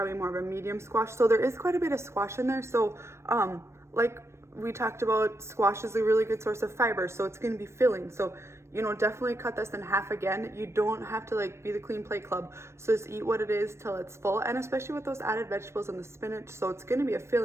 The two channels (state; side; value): late; left; 0.13 ms